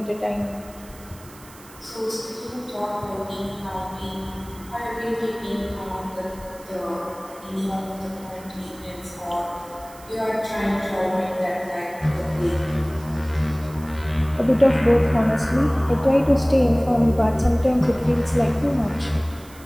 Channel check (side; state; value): right; noise; hiss, 21 dB below the sound